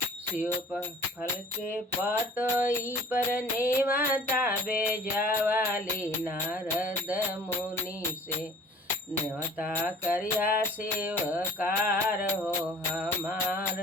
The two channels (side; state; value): both; normal; correlation 0.49